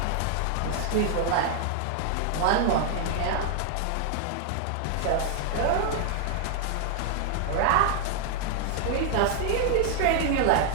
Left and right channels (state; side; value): different; both; correlation 0.00